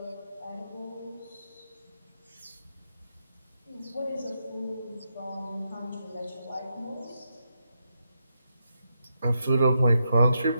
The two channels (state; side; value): inverted; both; correlation -0.83